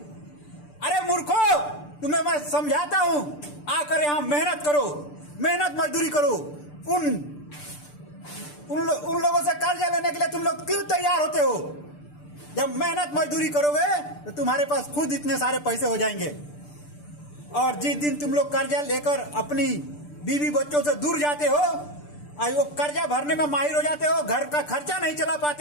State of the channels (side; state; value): right; late; 6.8 ms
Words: अरे मूर्खो, तुम्हें मैं समझाता हूं, आकर यहाँ मेहनत करो, मेहनत मजदूरी करो। उन लोगों से कर्जा लेने के लिए तुम लोग क्यों तैयार होते हो? जब मेहनत मजदूरी करोगे तो तुम्हारे पास खुद इतने सारे पैसे हो जाएंगे। और जिस दिन तुम लोग कर्जा लेकर अपनी बीवी बच्चों से दूर जाते हो और वो कर्जा भरने में माहिर हो जाते हो, घर का खर्चा नहीं चला